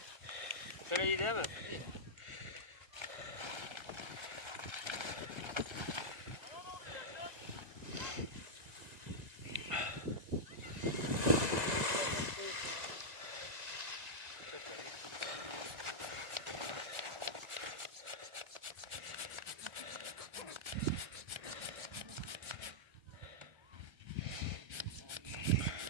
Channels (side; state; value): left; late; 2.0 ms